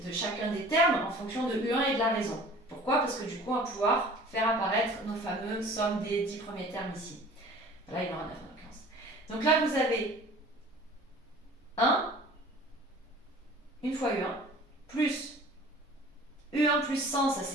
de chacun des termes en fonction de U1 et de la raison. Pourquoi? Parce que du coup, on va pouvoir faire apparaître nos fameuses sommes des 10 premiers termes ici. Là, il y en a 9 en l'occurrence. Donc là, vous avez 1, une fois U1, plus U1 plus 100, ça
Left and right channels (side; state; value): both; normal; correlation 0.46